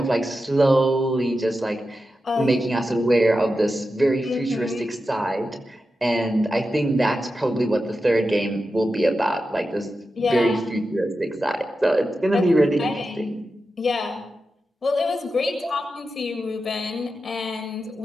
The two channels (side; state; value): both; normal; correlation 0.91